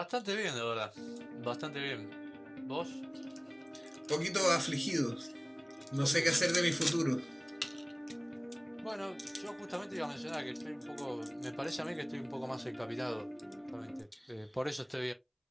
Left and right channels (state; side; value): identical; both; correlation 1.00